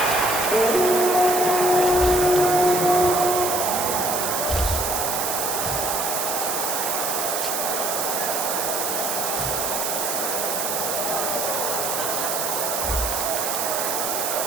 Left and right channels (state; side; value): noise; right; hiss, 1 dB below the sound